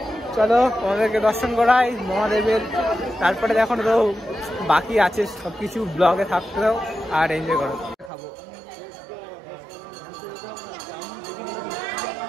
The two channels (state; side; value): drops out; left; at 8.1 s